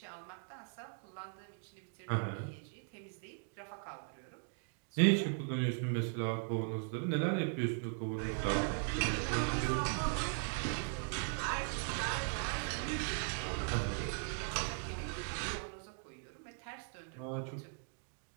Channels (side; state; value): left; silent; 52 dB below the other